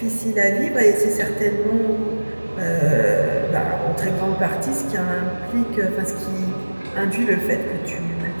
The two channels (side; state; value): both; inverted; correlation -1.00